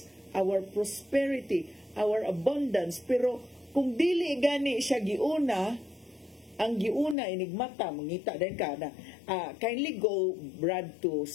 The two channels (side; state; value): right; drops out; at 7.2 s